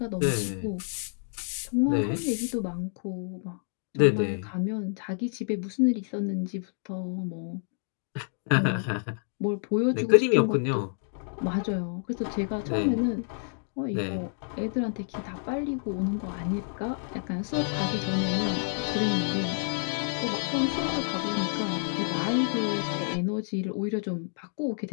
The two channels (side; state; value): right; silent; 59 dB below the other